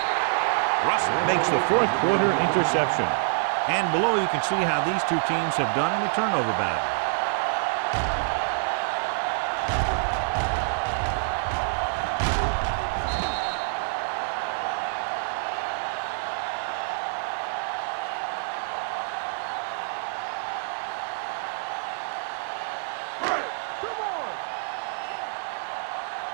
Russell makes the fourth quarter interception. And below you can see how these two teams have done in the turnover battle. Come on. Let's go.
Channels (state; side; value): silent; left; 56 dB below the other